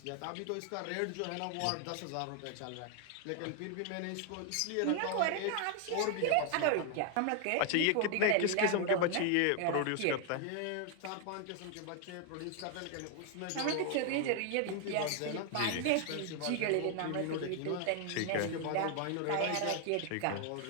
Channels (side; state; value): both; different; correlation 0.00